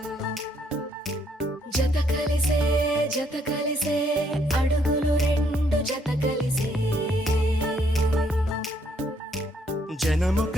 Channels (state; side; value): normal; both; correlation 0.70